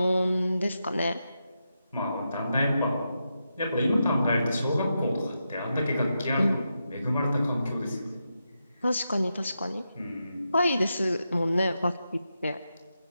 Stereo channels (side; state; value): both; inverted; correlation -0.87